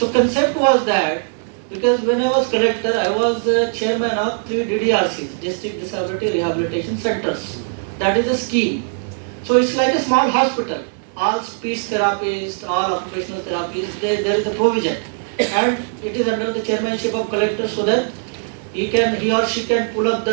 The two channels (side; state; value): left; silent; digital silence